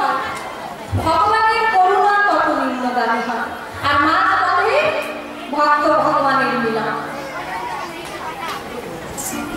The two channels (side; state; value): both; identical; correlation 1.00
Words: ভগবানের করুণা তত নিম্নগামী হয়। আর মাঝ পথে ভক্ত ভগবানের মিলন।